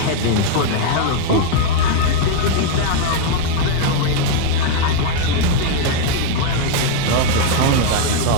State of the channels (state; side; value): different; both; correlation 0.00